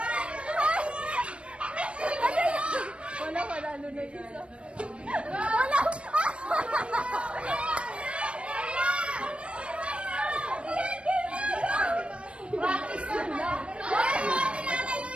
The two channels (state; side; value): late; left; 0.059 ms